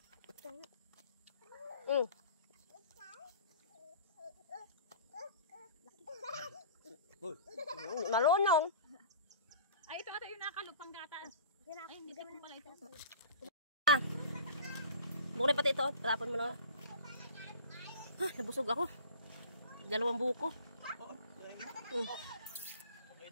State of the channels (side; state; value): both; inverted; correlation -0.41